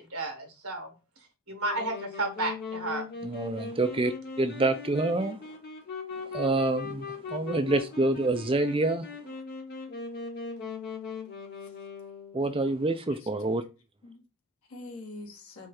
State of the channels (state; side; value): normal; both; correlation 0.43